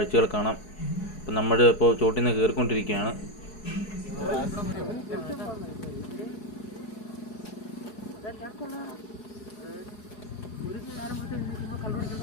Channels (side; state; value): right; late; 4.7 ms